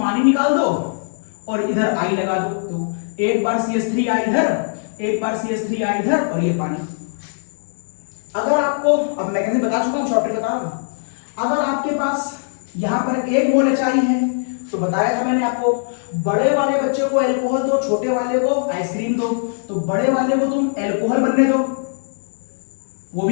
निकाल दो और इधर I लगा दो। तो एक बार CH3 इधर, एक बार CH3 इधर और ये पानी। अगर आपको, अब मैं कैसे बता चुका हूं, शॉर्ट बता रहा हूं, अगर आपके पास यहां पर 1 मोल HI है तो बताया था मैंने आपको, बड़े वाले बच्चे को अल्कोहल दो, छोटे वाले को आइसक्रीम दो। तो बड़े वाले को तुम अल्कोहल बनने दो, वो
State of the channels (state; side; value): silent; right; 64 dB below the other